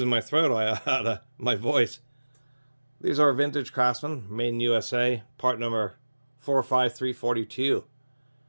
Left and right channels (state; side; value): inverted; both; correlation -1.00